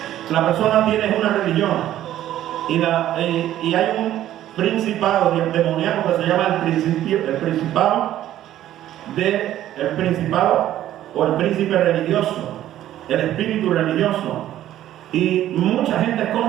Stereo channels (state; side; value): quieter; left; 12.7 dB